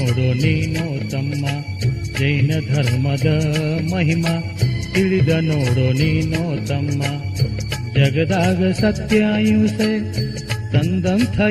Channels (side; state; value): both; identical; correlation 1.00